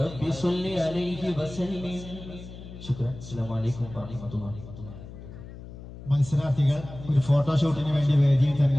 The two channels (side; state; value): left; noise; hum, 14 dB below the sound